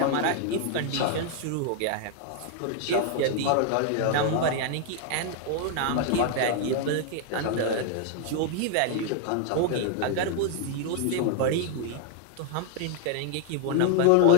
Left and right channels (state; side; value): different; both; correlation 0.00